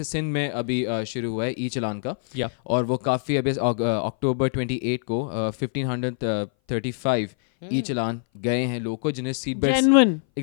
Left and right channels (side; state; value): right; silent; 59 dB below the other